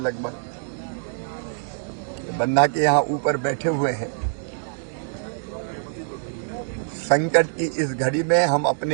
बन्ना के यहाँ ऊपर बैठे हुए हैं। संकट की इस घड़ी में हम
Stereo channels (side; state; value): left; silent; digital silence